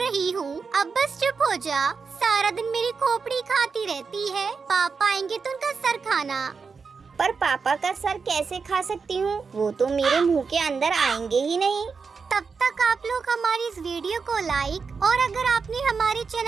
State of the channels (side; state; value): left; quieter; 5.2 dB